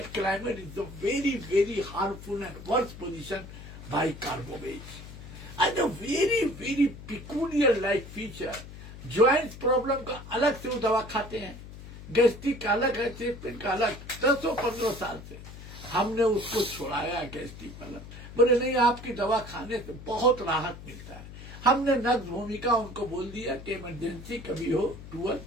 climate is a very, very harmful and worse position by carbovage. And a very, very peculiar like feature. Joints problem का अलग से वो दवा खाते हैं, gastric का अलग है, चेस्ट पेन का अलग. 10-15 साल से हमने उसको छुड़ाया गैस्ट्रिक वाला. बोले नहीं, आपकी दवा खाने से बहुत राहत मिलता है. हमने नग्न भूमिका उनको बोल दिया कि इमरजेंसी कभी हो टूअल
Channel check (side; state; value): left; noise; hum, 14 dB below the sound